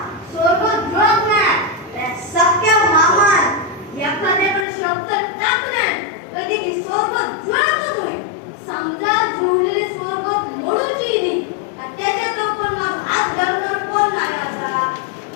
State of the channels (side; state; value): right; drops out; at 4.7 s